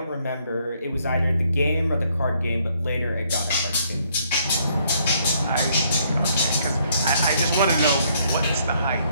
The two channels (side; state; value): both; inverted; correlation -0.68